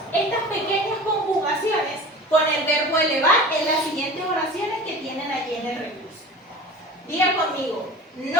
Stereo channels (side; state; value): both; normal; correlation 0.37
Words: estas pequeñas conjugaciones con el verbo elevar en las siguientes oraciones que tienen allí en el recurso. Diga conmigo,